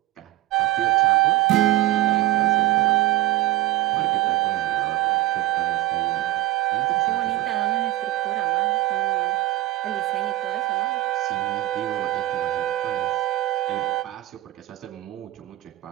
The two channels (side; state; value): left; quieter; 16.8 dB